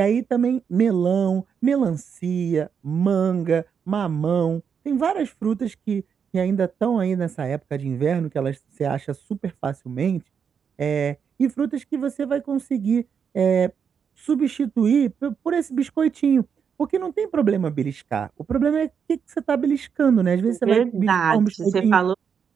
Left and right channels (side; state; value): left; quieter; 6.9 dB